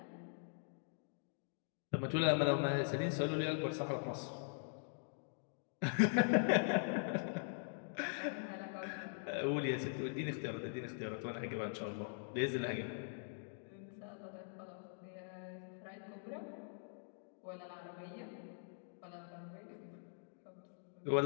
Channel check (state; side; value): silent; right; digital silence